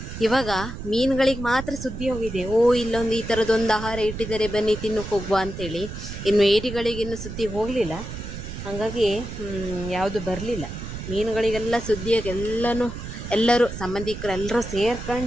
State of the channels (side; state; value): right; noise; rumble, 9 dB below the sound